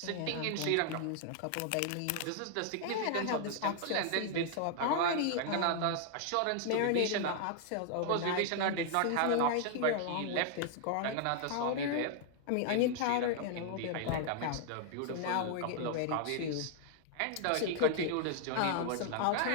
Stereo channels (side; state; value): both; different; correlation 0.00